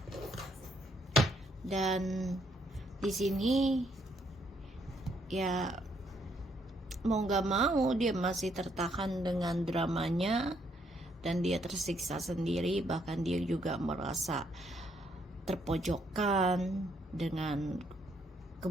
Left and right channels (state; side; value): normal; both; correlation 0.72